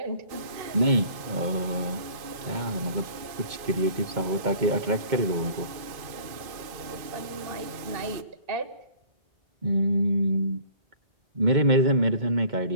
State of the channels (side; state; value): left; late; 2.4 ms